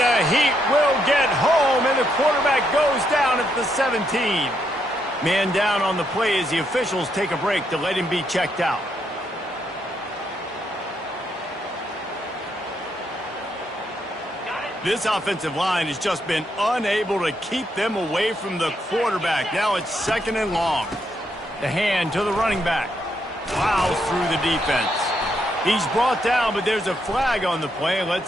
Heat will get home, and the quarterback goes down at the 17. Man down on the play as the officials take a break to let him be checked out. This offensive line has just been unable to keep them away from the quarterback. Now it's 2nd and long. The hand to the running back. Plows through the defense. He's brought down, but there's a flag on the play.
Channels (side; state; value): both; normal; correlation 0.77